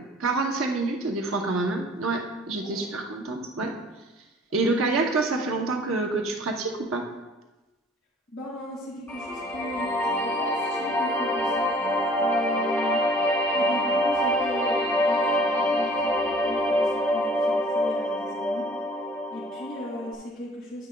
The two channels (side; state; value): both; normal; correlation 0.51